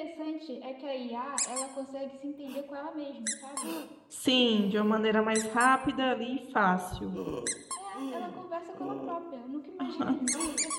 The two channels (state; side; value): identical; both; correlation 1.00